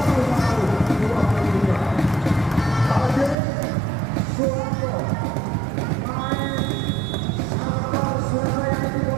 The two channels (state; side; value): drops out; left; at 3.4 s